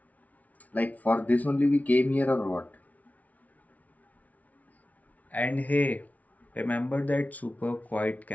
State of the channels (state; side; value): late; right; 0.072 ms